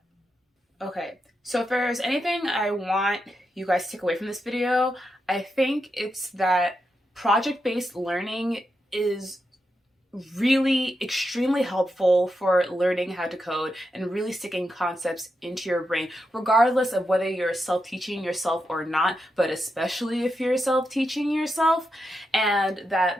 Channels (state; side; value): normal; both; correlation 0.86